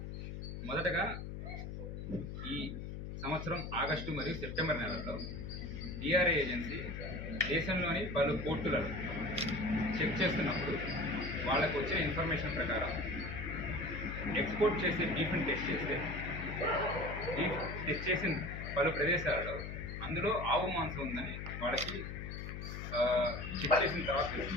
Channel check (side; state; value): left; noise; hum, 7 dB below the sound